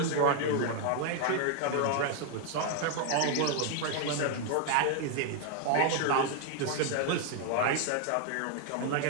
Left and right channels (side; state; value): both; different; correlation 0.00